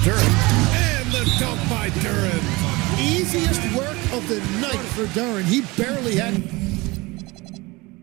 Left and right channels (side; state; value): left; quieter; 23.1 dB